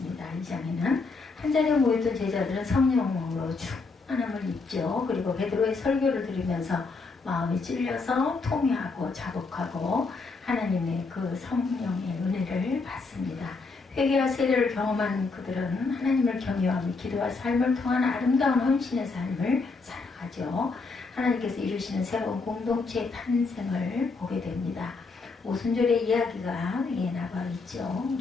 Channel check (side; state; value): right; quieter; 4.1 dB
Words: 이 장에는 한자리에 모였던 제자들은 성령으로 충만함을 입죠. 그리고 베드로의 설교를 들으면서 마음이 찔려서 통회하고 자복하고 하나님의 그 성령의 은혜를 받습니다. 회개와 세례를 경험한 그들은 하나님을 경외하며 기도와 삶을 통한 아름다운 헌신의 삶을 살아가죠. 하나님께서 이루시는 새로운 공동체의 탄생을 보게 됩니다. 오순절의 이야기가 나와 있죠.